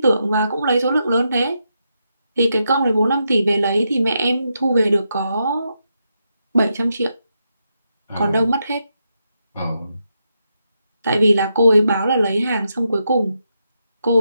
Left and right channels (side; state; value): both; inverted; correlation -0.83